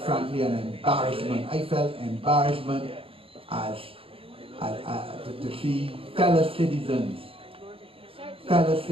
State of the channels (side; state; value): left; late; 0.27 ms